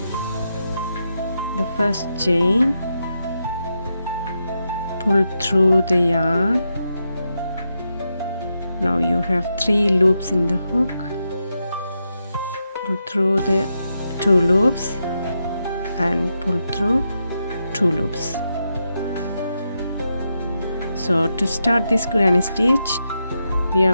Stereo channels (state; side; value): inverted; both; correlation -0.85